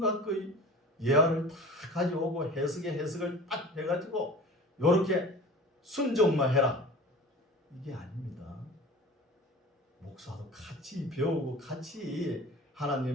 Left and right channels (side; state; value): both; normal; correlation 0.39